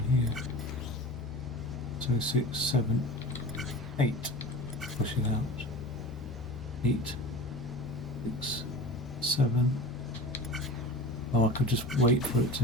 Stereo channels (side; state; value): both; normal; correlation 0.34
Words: here. So 6, 7, 8. Push it out. 8, 6, 7. Oh, I could just wait for it to